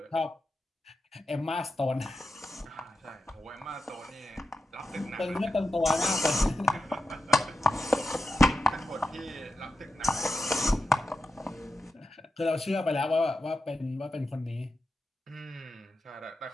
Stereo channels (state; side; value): normal; both; correlation 0.89